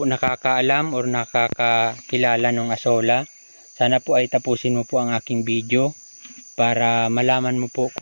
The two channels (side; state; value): both; inverted; correlation -1.00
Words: nakakaalam or nakakakilala ng asola, sana po ay tapusin mo po ang aking video para malaman mo po